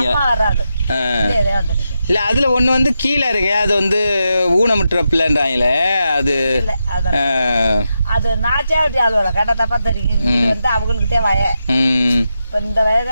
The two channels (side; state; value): both; inverted; correlation -0.87